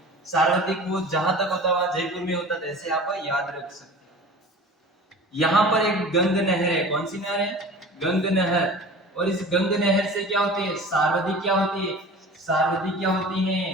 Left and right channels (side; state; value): both; normal; correlation 0.40